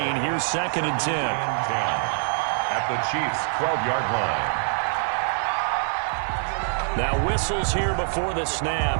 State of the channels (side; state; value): left; silent; digital silence